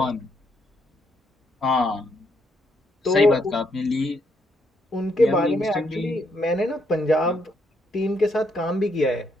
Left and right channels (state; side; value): normal; both; correlation 0.75